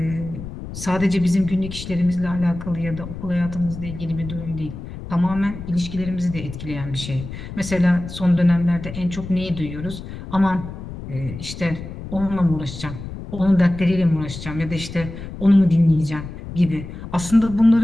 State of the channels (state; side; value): noise; left; rumble, 10 dB below the sound